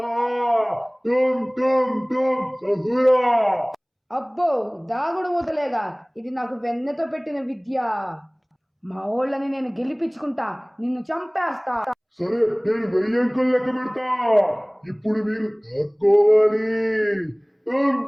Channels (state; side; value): identical; both; correlation 1.00